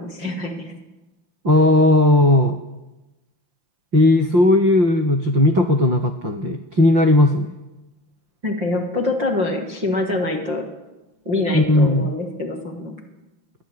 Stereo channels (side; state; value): left; late; 5.7 ms